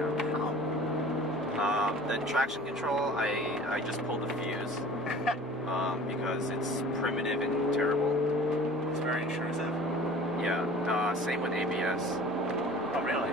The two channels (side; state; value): both; normal; correlation 0.45